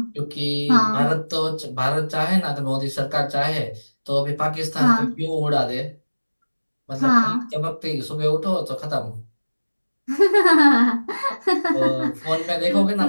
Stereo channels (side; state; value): both; inverted; correlation -1.00